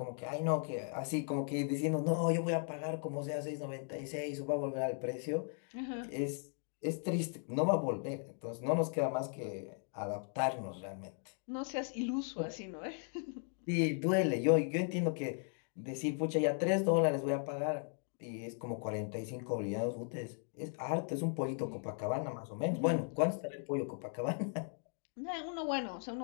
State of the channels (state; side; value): silent; right; 53 dB below the other